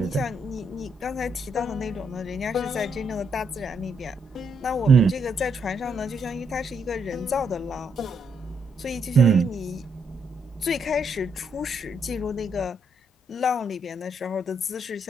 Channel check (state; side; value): normal; both; correlation 0.76